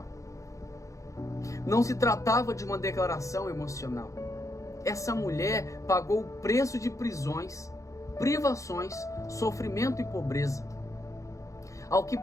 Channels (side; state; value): right; late; 0.15 ms